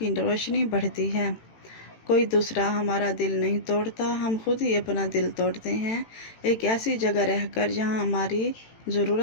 روشنی بڑھتی ہے۔ کوئی دوسرا ہمارا دل نہیں توڑتا، ہم خود ہی اپنا دل توڑتے ہیں، ایک ایسی جگہ رہ کر جہاں ہماری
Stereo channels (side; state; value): right; late; 18 ms